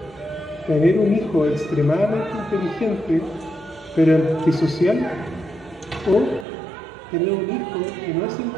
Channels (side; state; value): left; drops out; at 6.5 s